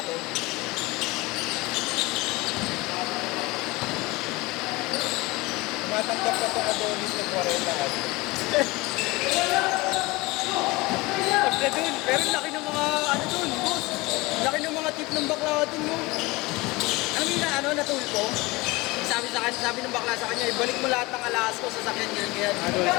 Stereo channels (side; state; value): right; quieter; 22.6 dB